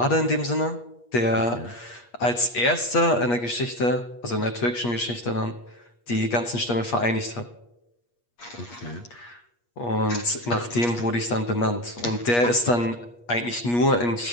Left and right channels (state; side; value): late; right; 8.4 ms